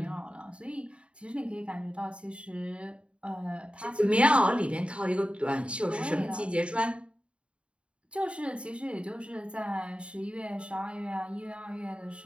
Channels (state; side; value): late; left; 0.058 ms